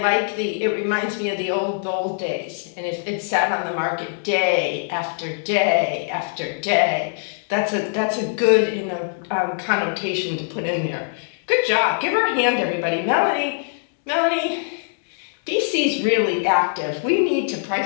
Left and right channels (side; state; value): right; silent; digital silence